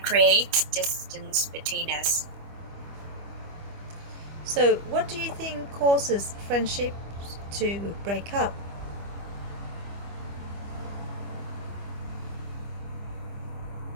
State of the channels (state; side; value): late; left; 25 ms